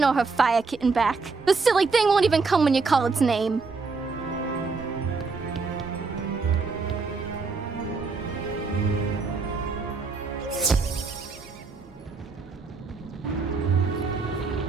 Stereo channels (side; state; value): left; quieter; 4.3 dB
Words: her fire kitten back. The silly thing won't even come when you call its name.